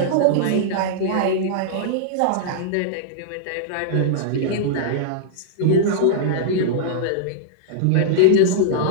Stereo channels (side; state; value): both; different; correlation -0.02